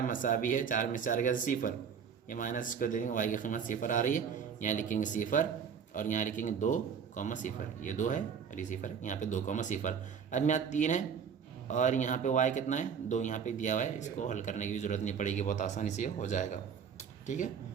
मसावी है 4 में 4 गया 0, ये माइनस इसको दे देंगे, y की कीमत 0 आ रही है, यहाँ लिखेंगे 0 और यहाँ लिखेंगे 2,0, ये 2 है और ये 0 है, यहाँ पे 2,0। अब यहाँ 3 है और यहाँ पे y कितना है 2, यहाँ पे दिया हुआ है, इसको हल करने की भी ज़रूरत नहीं पड़ेगी, बहुत आसानी से हो जाएगा। ठीक है,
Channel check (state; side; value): quieter; left; 7.0 dB